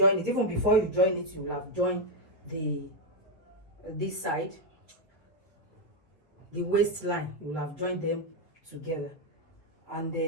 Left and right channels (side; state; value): both; normal; correlation 0.04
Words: it. Even before you join it, you will have joined this side, the waistline. You will have joined them together. And